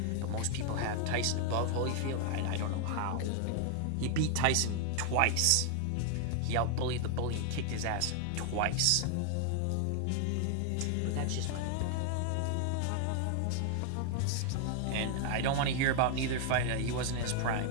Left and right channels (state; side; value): different; both; correlation 0.00